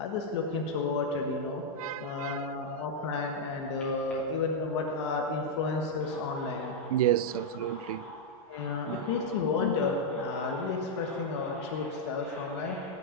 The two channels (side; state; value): both; normal; correlation -0.03